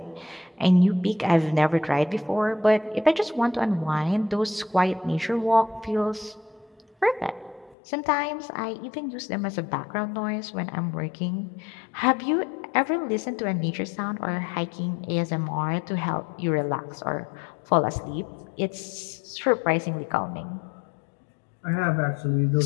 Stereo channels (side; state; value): right; drops out; at 7.8 s